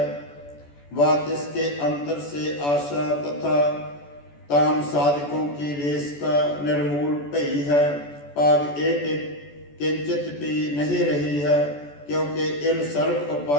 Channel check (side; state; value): right; late; 14 ms